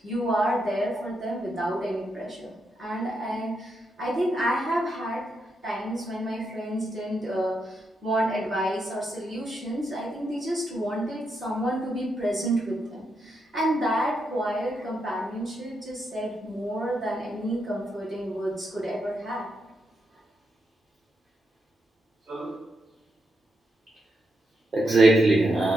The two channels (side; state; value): both; normal; correlation 0.82